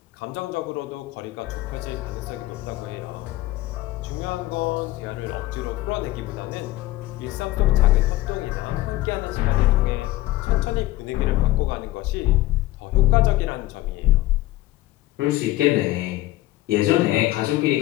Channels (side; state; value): right; quieter; 17.3 dB